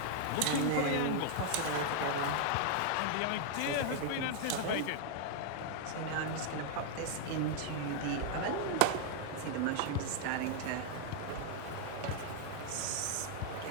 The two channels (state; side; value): different; both; correlation 0.00